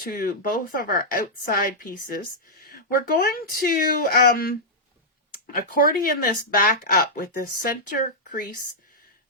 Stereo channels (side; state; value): both; normal; correlation -0.08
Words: both of our outside pieces. We're going to accordion this back up with the center crease